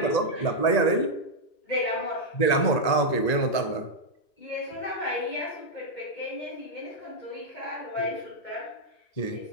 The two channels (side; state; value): right; late; 1.9 ms